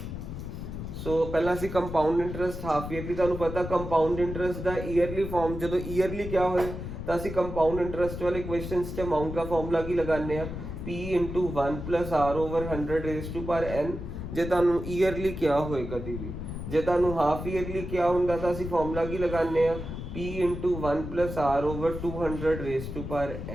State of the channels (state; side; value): noise; left; rumble, 7 dB below the sound